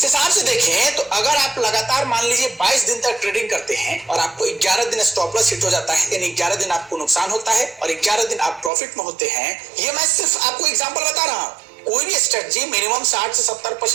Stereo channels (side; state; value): left; drops out; at 8.7 s